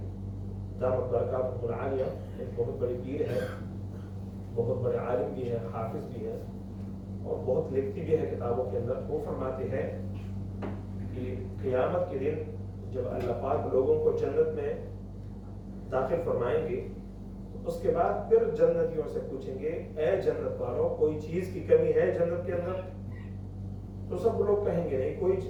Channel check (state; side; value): identical; both; correlation 1.00